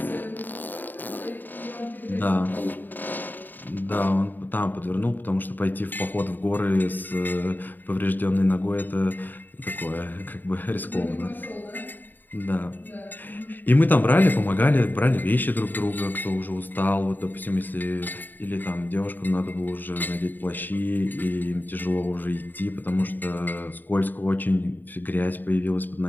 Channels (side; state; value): right; late; 0.090 ms